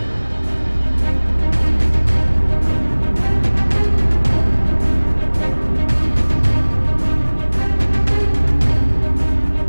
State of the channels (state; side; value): inverted; both; correlation -1.00